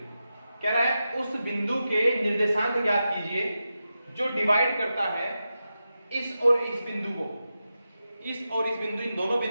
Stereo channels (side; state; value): both; inverted; correlation -0.90